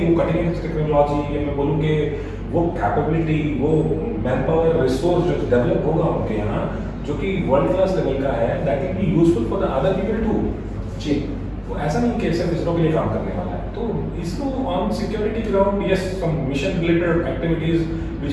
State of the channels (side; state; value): both; identical; correlation 1.00